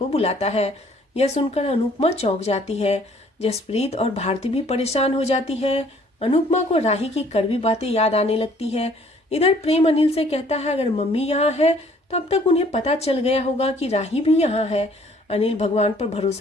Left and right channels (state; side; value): normal; both; correlation 0.59